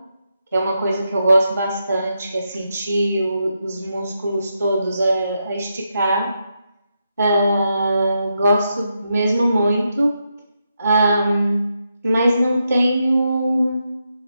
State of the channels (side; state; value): both; inverted; correlation -0.83